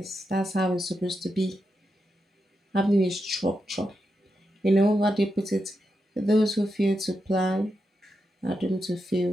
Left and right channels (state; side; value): normal; both; correlation 0.86